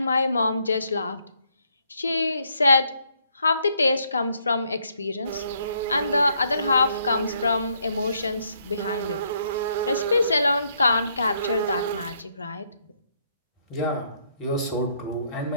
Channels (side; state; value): both; inverted; correlation -0.72